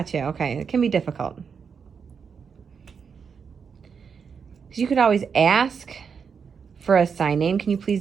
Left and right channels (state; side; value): quieter; left; 6.3 dB